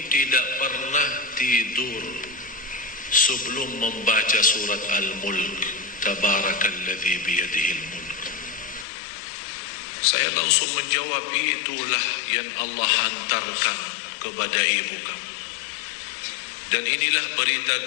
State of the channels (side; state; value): right; drops out; at 8.8 s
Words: tidak pernah tidur sebelum membaca surat Al-Mulk. Tabarakalladzi biyadihil mulk. Saya langsung menjawab, itulah yang Allah hantarkan kepada ibu kamu. Dan inilah berita